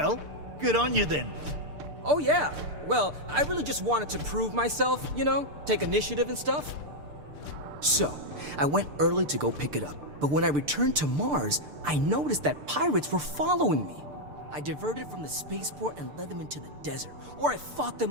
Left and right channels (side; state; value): left; late; 6.8 ms